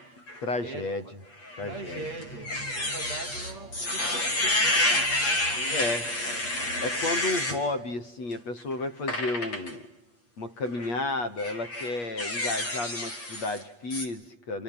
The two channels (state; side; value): late; right; 8.4 ms